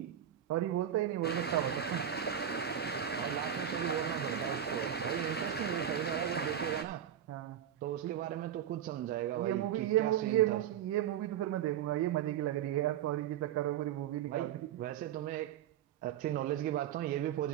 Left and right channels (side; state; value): left; quieter; 10.0 dB